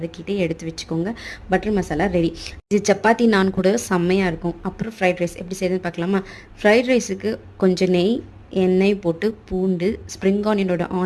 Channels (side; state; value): both; identical; correlation 1.00